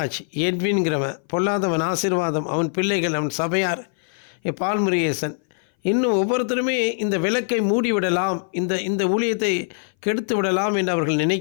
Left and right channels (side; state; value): right; silent; 59 dB below the other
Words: எட்வின்கிறவன், பொல்லாதவன் ஆசீர்வாதம், அவன் பிள்ளைகள், அவன் சபையார், பால்முருகேசன், இன்னும் ஒவ்வொருத்தருமே இந்த விளக்கை மூடிவிடலாம், இந்த ஊழியத்தை கெடுத்து விடலாம் என்று அவர்கள்